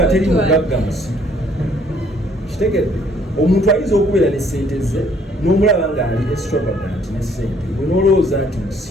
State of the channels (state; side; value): normal; both; correlation 0.63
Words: teri mugagga musiru kitegedde omuntu ayinza okubeera ne ssente ze n'omulaba ng'ali extravagant ne ssente gwe n'olowooza nti